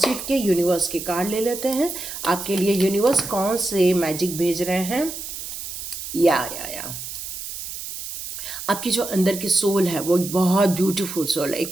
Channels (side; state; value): right; noise; hiss, 8 dB below the sound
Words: के यूनिवर्स के कार्ड ले लेते हैं। आपके लिए यूनिवर्स कौन से मैजिक भेज रहे हैं। या आपकी जो अंदर की सोल है वो एक बहुत ब्यूटीफुल सोल है,